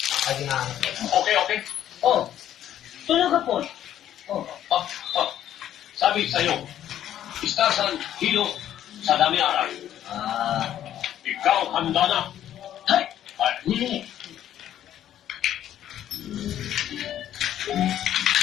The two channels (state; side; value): quieter; right; 11.3 dB